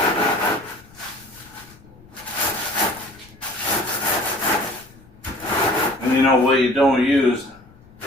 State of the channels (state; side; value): noise; left; rumble, 25 dB below the sound